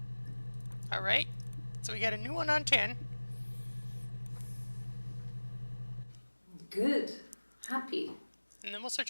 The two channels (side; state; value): both; inverted; correlation -1.00